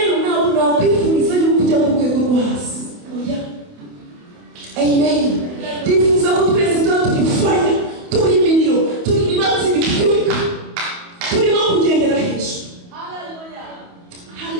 ntabwo nakwifuriza yuko ujya ku rwego rwo hasi. Oya. Amen. Ndifuza ko twese tuba turi fire, turi imiriro, turi ibibatsi bitwika, turimo kugendera hejuru.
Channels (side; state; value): left; late; 28 ms